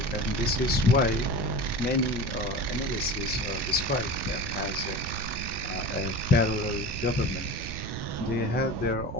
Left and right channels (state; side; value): noise; right; rumble, 7 dB below the sound